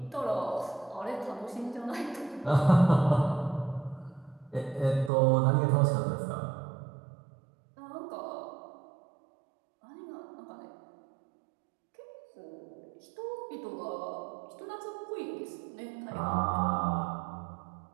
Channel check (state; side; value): drops out; left; at 5.1 s